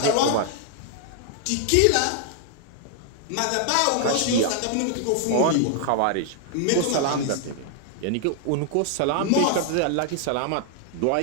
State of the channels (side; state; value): both; different; correlation 0.00